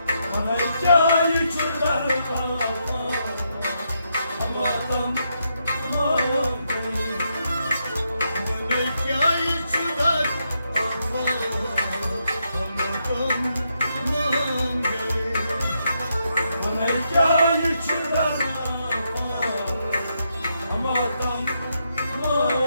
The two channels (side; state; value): both; inverted; correlation -0.80